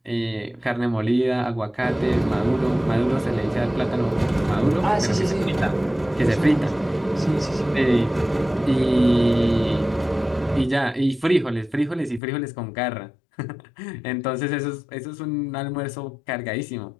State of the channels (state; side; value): drops out; right; at 12.2 s